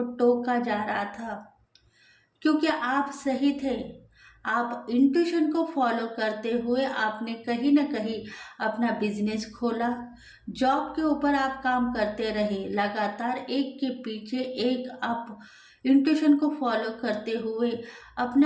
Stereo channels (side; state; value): both; identical; correlation 1.00